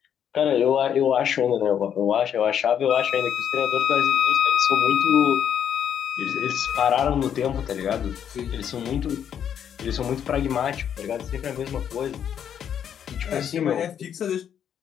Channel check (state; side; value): quieter; right; 8.8 dB